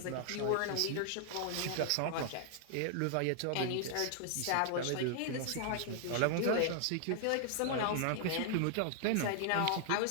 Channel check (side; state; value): both; different; correlation 0.00